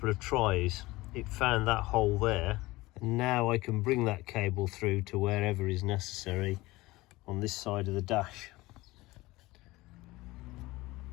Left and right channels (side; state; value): right; quieter; 19.9 dB